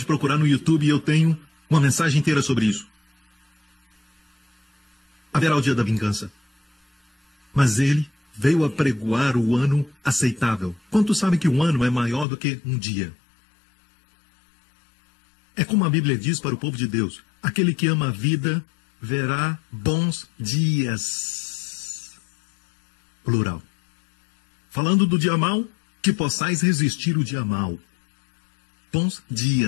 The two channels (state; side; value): drops out; right; at 12.2 s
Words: procurar no YouTube e eu tenho uma mensagem inteira sobre isso. haverá o dia da vingança. Mas ele veio apregoar o ano aceitável. Quantos sabem que um ano é maior do que um dia? É como a Bíblia diz para o povo de Deus: aquele que ama a vida verá bons dias. Plural. Falando do dia mau, que possais resistir o dia mau. Bons